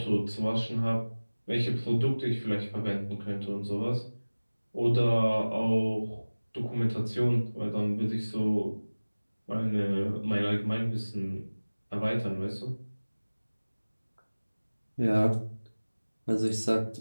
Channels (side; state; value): both; inverted; correlation -1.00